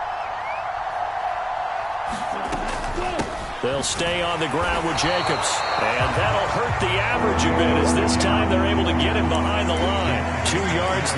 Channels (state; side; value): identical; both; correlation 1.00